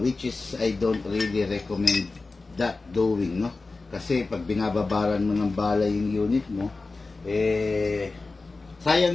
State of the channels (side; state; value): right; quieter; 3.7 dB